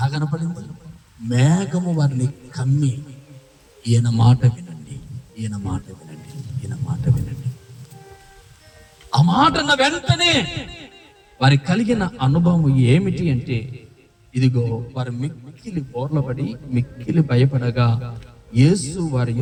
కనపడింది? మేఘము వారిని కమ్మి ఈయన మాట వినండి. ఆ మాట అన్న వెంటనే వారికి కలిగిన అనుభవం ఏమిటి అంటే, ఇదిగో వారు మిక్కిలి బోర్లపడి మిక్కిలి భయపడగా యేసు వారి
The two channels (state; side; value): identical; both; correlation 1.00